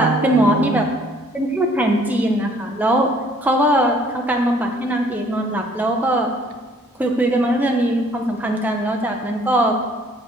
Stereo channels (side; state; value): both; normal; correlation 0.59